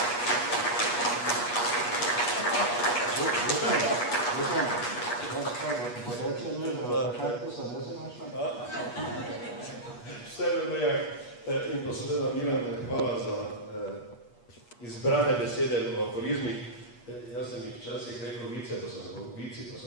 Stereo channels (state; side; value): late; right; 8.3 ms